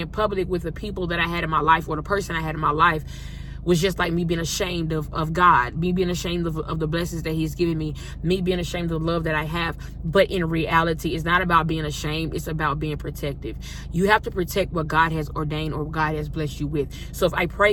public with the people that I had in my life, or the person I had in my life, was just like me being ashamed of God, me being ashamed of the blessings that he's given me being ashamed of the love that I have. But in reality, it's not about being ashamed. It's about being protective. You have to protect what God has ordained or God has blessed you with. So if I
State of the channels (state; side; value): identical; both; correlation 1.00